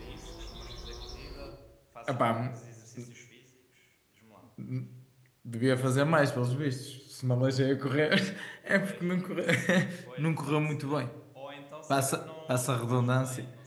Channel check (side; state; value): both; identical; correlation 1.00